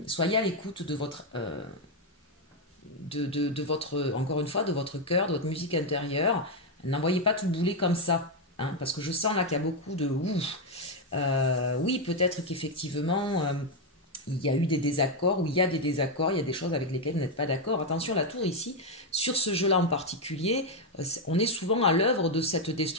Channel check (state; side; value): normal; both; correlation 0.03